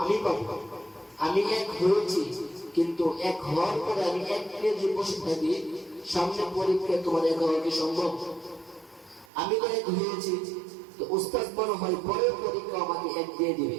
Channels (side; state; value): left; drops out; at 9.2 s